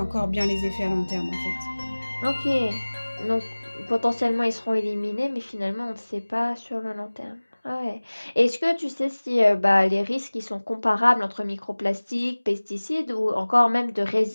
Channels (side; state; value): both; inverted; correlation -1.00